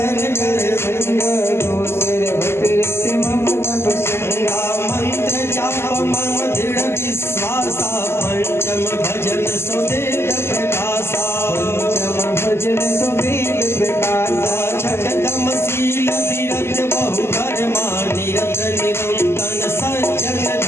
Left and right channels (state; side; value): late; right; 0.12 ms